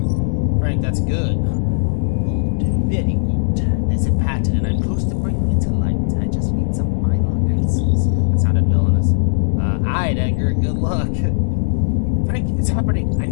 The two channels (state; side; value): silent; right; digital silence